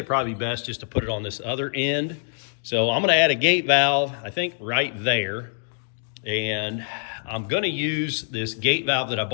probably be best just to put it on this other end. So I'm going to add a gate valve, I think right there. And I'm going to use this gate valve that I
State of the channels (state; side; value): silent; right; digital silence